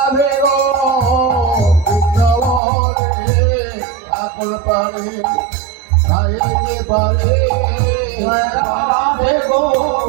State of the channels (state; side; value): drops out; left; at 2.6 s